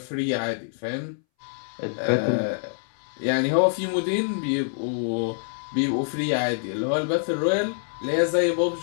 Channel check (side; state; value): right; silent; 61 dB below the other